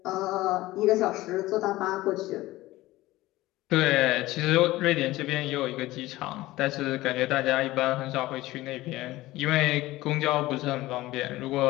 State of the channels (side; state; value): right; quieter; 17.8 dB